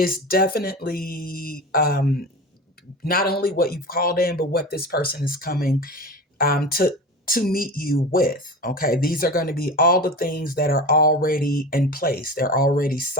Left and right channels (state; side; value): normal; both; correlation 0.30